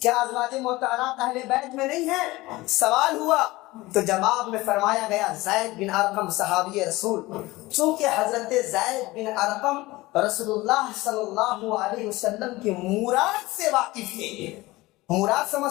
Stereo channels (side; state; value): right; quieter; 19.9 dB